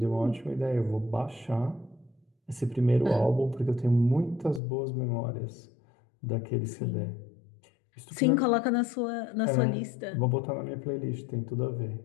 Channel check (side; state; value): right; drops out; at 4.6 s